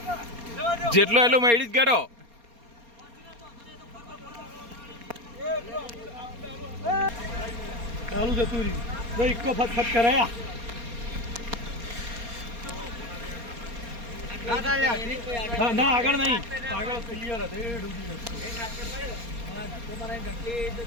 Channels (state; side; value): late; left; 4.3 ms